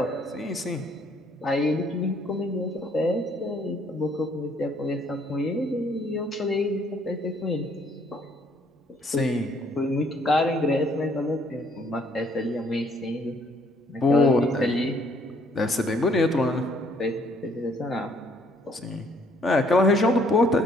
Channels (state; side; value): normal; both; correlation 0.65